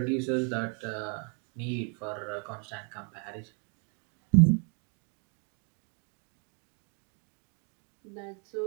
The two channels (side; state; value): left; quieter; 39.7 dB